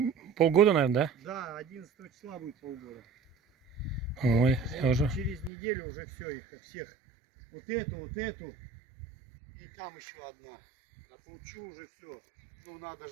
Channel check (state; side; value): drops out; left; at 5.5 s